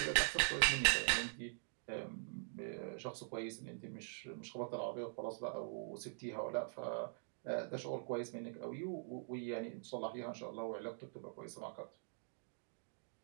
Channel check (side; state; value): left; silent; digital silence